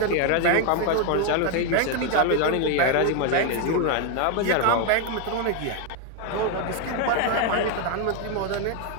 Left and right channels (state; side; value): different; both; correlation 0.01